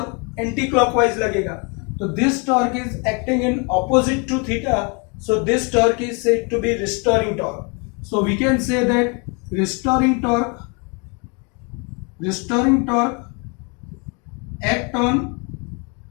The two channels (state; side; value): quieter; right; 33.4 dB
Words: एंटी क्लॉकवाइज लगेगा. तो this torque is acting in opposite to theta, so this torque is said to be restoring torque. So we can say that restoring torque act on